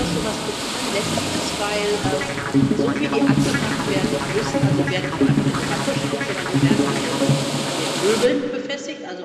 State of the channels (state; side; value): identical; both; correlation 1.00